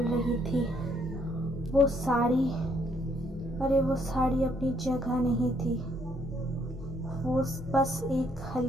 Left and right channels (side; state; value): both; normal; correlation 0.69